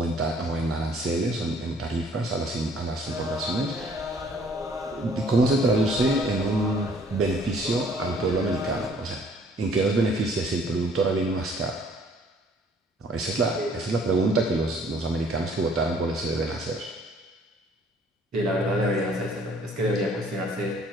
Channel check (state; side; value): normal; both; correlation 0.58